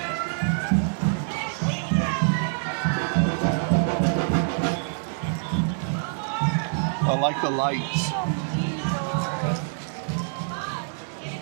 I like the lights.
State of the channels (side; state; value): left; silent; digital silence